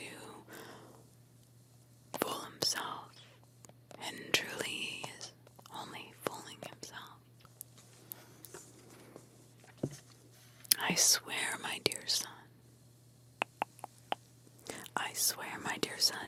fool himself, and truly he is only fooling himself. I swear, my dear son, I swear, my dear son,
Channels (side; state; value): both; identical; correlation 1.00